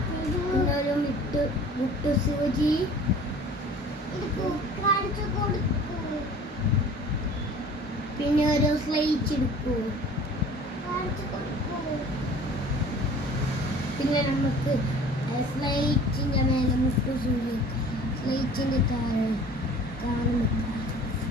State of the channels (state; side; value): normal; both; correlation 0.46